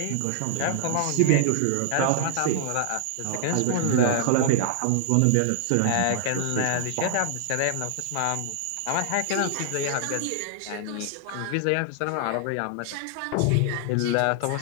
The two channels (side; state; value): both; different; correlation 0.00